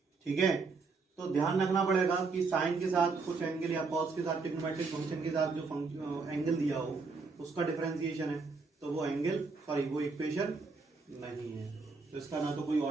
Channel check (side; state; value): left; quieter; 4.3 dB